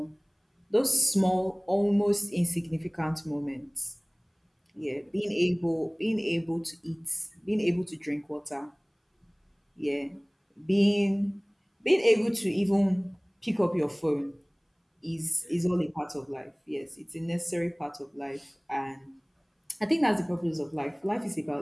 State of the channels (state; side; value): identical; both; correlation 1.00